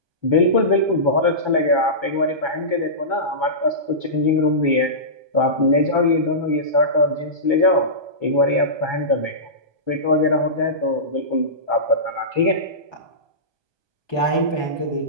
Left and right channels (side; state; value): left; late; 1.2 ms